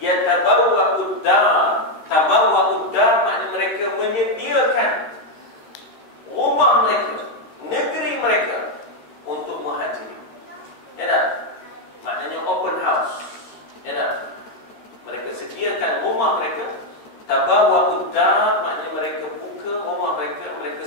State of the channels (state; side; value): late; right; 13 ms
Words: dar. Tabawwa'ud dar maknanya mereka menyediakan rumah mereka, negeri mereka untuk muhajirin. Ya tak? Maknanya open house. Ya tak? Mereka sediakan rumah mereka. Tabawwa'ud dar maknanya mereka buka rumah mereka, mereka